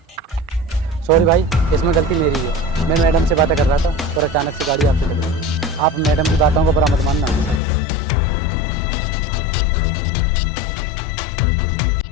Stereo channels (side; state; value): right; drops out; at 7.6 s